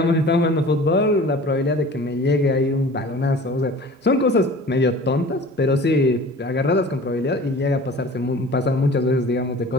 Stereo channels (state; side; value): normal; both; correlation 0.43